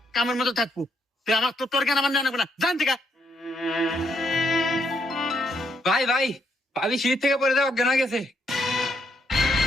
কামের মতো থাকবো। তুই আমার তোর জ্ঞান আমার জানাবো না, জান থেকে। ভাই ভাই, ভাবি সিঁড়ি থেকে পড়ে দেওয়া অজ্ঞান হয়ে গেছে।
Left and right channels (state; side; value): normal; both; correlation 0.75